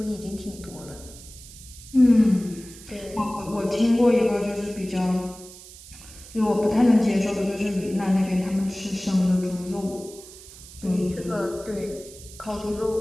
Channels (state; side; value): noise; right; hiss, 18 dB below the sound